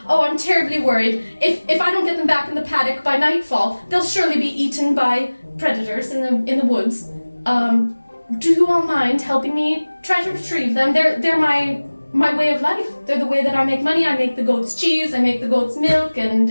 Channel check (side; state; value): both; inverted; correlation -1.00